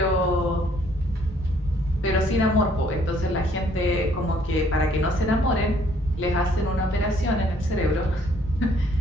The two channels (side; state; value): both; normal; correlation 0.63